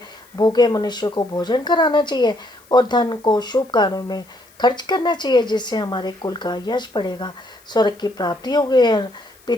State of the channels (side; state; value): left; noise; hiss, 29 dB below the sound